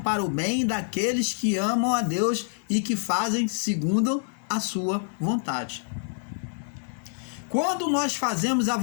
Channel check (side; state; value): right; silent; digital silence